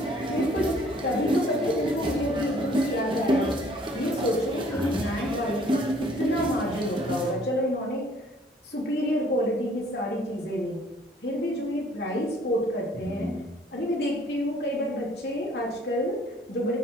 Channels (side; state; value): both; normal; correlation 0.58